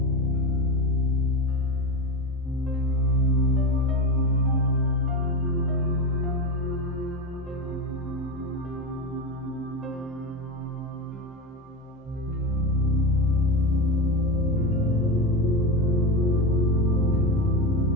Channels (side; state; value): both; normal; correlation 0.19